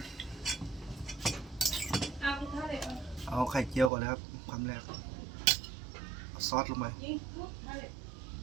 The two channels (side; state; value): left; drops out; at 3.9 s